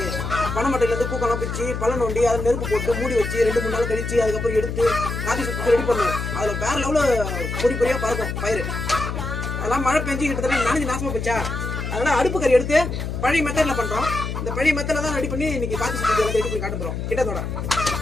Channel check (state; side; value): noise; left; hum, 4 dB below the sound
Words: பனைமட்டையில இருந்து பூக்கெல்லாம் பிச்சு பழம் நோண்டி அதில் நெருப்பு போட்டு மூடி வச்சு 2-3 நாள் கழிச்சு அதுக்கப்புறம் எடுத்து கார்த்திகை சுத்தி ரெடி பண்ணுவோம். அதுல வேற லெவலில் பொறி பொறியா பறக்கும் பயிர். அதெல்லாம் மழை பெஞ்சு கிட்டத்தட்ட நனைஞ்சு நாசமா போச்சா, அதனால அடுப்பு கறி எடுத்து பழைய மெத்தட்ல பண்றோம். இந்த பழைய மெத்தட்ல தான் ரெடி பண்ணி இன்னைக்கு கார்த்திகை சுத்தி ரெடி பண்ணி காட்ட போறோம் கிட்டத்தோட.